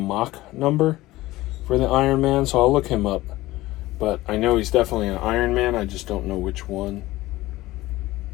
number for the Iron Man, so I'll look him up. But I know he's definitely an Iron Man, I just don't know which one.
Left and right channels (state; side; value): quieter; right; 17.8 dB